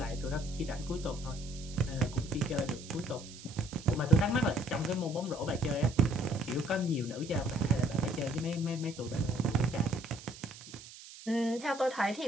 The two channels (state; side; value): noise; right; hiss, 16 dB below the sound